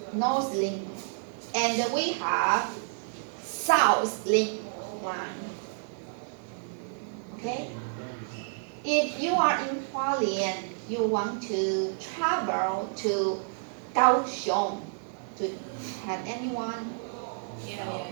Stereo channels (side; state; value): left; silent; 58 dB below the other